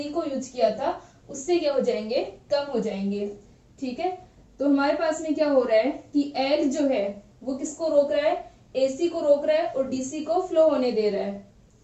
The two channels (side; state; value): both; identical; correlation 1.00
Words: को यूज किया था उससे क्या हो जाएंगे, कम हो जाएंगे। ठीक है, तो हमारे पास में क्या हो रहा है कि L जो है वो किसको रोक रहा है, AC को रोक रहा है और DC को फ्लो होने दे रहा है।